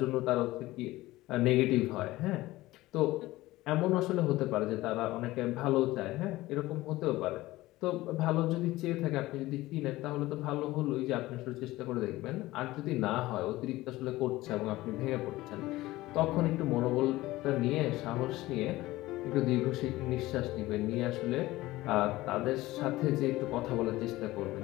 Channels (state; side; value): quieter; right; 18.0 dB